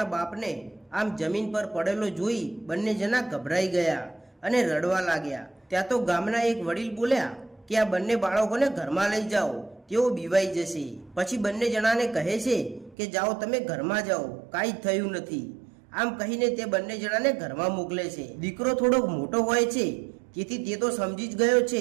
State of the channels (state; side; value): drops out; left; at 13.0 s